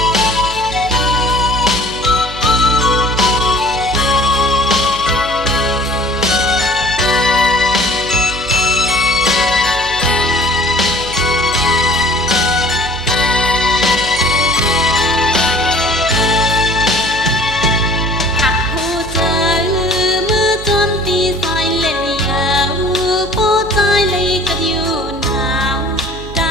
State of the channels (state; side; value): noise; right; hum, 12 dB below the sound